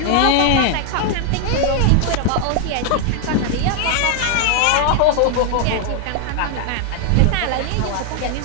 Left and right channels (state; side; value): different; both; correlation 0.00